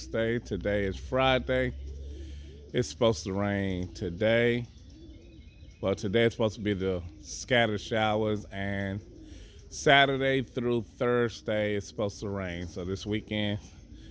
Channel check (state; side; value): identical; both; correlation 1.00